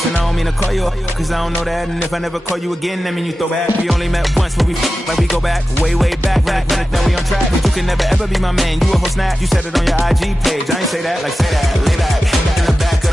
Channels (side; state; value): both; normal; correlation 0.94